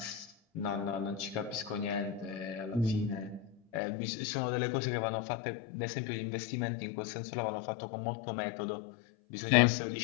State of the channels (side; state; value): right; drops out; at 3.8 s